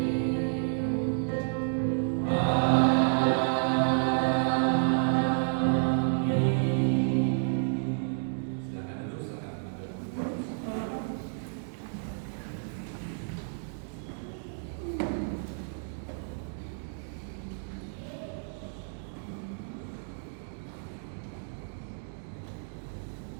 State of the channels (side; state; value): left; silent; digital silence